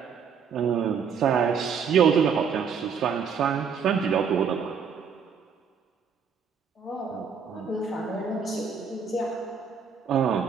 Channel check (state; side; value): quieter; left; 6.5 dB